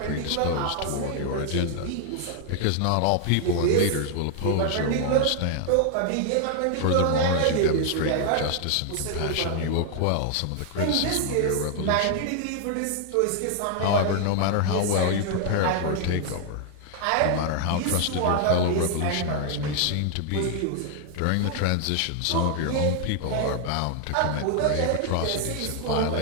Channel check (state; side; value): different; both; correlation 0.00